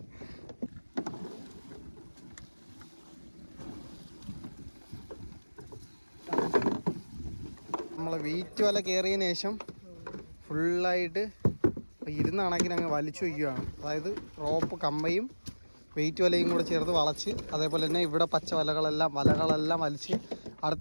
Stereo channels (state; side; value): inverted; both; correlation -1.00